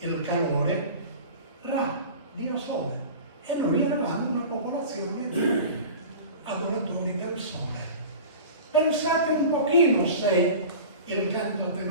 calore, Ra, dio Sole. E noi eravamo una popolazione di adoratori del Sole. Pensate un pochino se il canto a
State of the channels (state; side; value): inverted; both; correlation -0.37